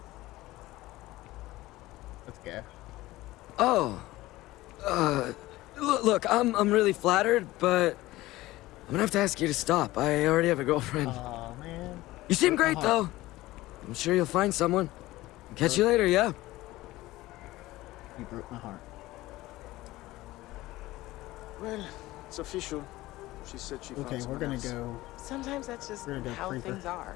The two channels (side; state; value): right; quieter; 17.8 dB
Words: Let's go. Oh. Look, I'm really flattered, but I'm gonna have to ask you to stop. I already have a girlfriend. Aw, man. You seem broke my great, heart. though. I'm sure you'll find someone. Catch you later, yeah? You broke my heart. Well, it's official. She said she found Okay, we're someone gonna else. go. Sometimes that's just We're gonna go how creeper. things